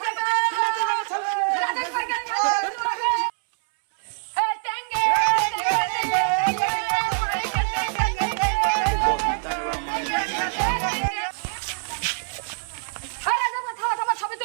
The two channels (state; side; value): silent; left; 62 dB below the other